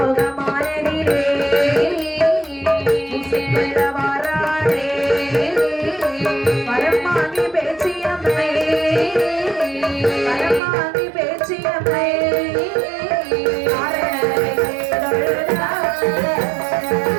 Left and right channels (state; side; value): drops out; left; at 10.6 s